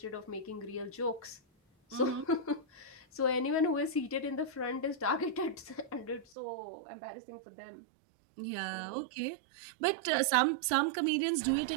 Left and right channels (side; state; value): left; drops out; at 6.4 s